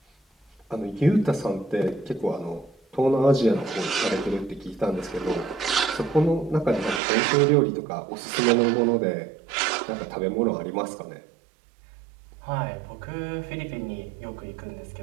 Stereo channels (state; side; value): drops out; left; at 7.0 s